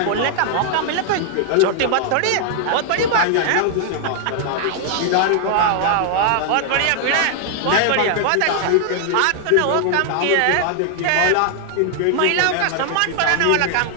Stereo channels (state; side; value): different; both; correlation 0.00